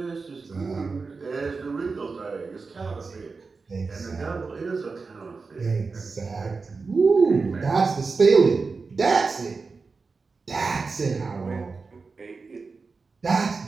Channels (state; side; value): quieter; left; 4.4 dB